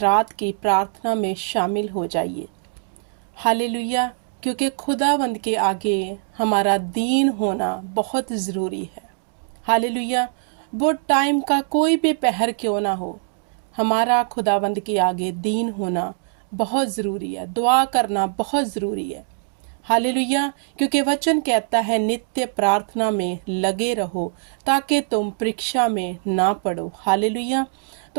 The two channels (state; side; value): silent; left; 62 dB below the other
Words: की प्रार्थना में शामिल हो जाइए। हालेलुया। क्योंकि खुदावंद के आगे हमारा दीन होना बहुत ज़रूरी है। हालेलुया। वो टाइम का कोई भी पहर क्यों ना हो, हमारा खुदावंद के आगे दीन होना बहुत ज़रूरी है। दुआ करना बहुत ज़रूरी है। हालेलुया। क्योंकि वचन कहता है नित्य प्रार्थना में लगे रहो ताकि तुम परीक्षा में ना पड़ो। हालेलुया।